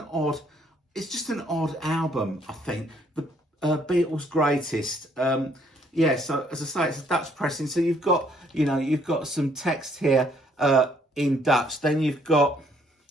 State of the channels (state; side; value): normal; both; correlation 0.67